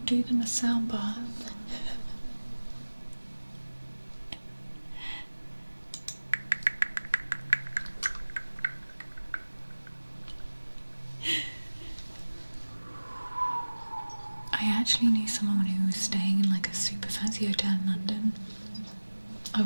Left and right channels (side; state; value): both; inverted; correlation -1.00